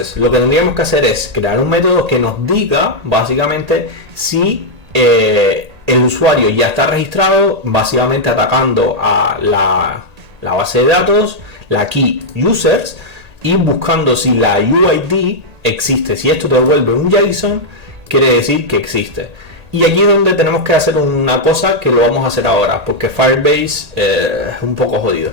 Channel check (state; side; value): late; left; 1.8 ms